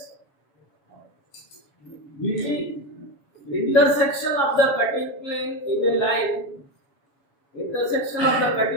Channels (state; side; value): late; right; 7.1 ms